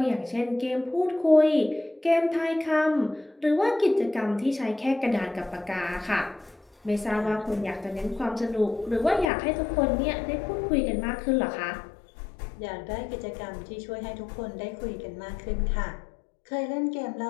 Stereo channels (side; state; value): right; drops out; at 9.3 s